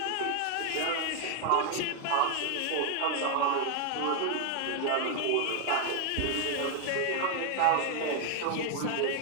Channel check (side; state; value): both; different; correlation 0.01